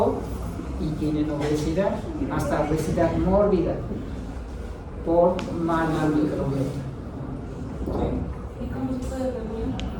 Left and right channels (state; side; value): identical; both; correlation 1.00